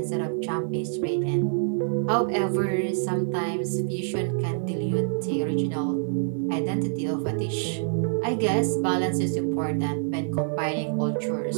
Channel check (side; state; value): left; silent; 61 dB below the other